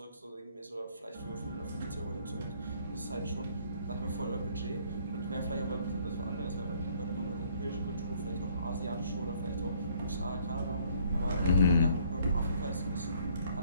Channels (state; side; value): inverted; both; correlation -0.62